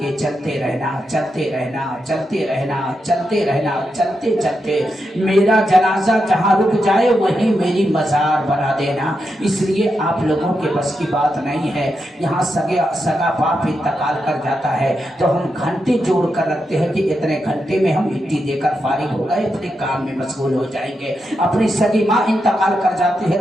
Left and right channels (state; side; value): normal; both; correlation 0.85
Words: चलते रहना, चलते रहना, चलते रहना, चलते रहना, चलते चलते मेरा जनाजा जहाँ रुक जाए वहीं मेरी मजार बना देना। इसलिए आप लोगों के बस की बात नहीं है। यहाँ सगा बाप इंतकाल कर जाता है तो हम घंटे जोड़ कर रखते हैं कि इतने घंटे में हम मिट्टी देकर फारिग हो गए, अपने काम में मशगूल हो जाएंगे। अपनी सगी माँ इंतकाल कर जाती